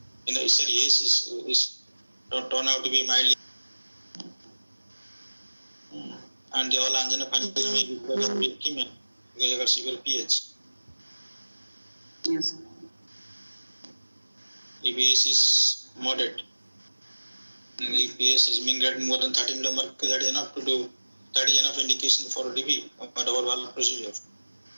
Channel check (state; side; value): inverted; both; correlation -1.00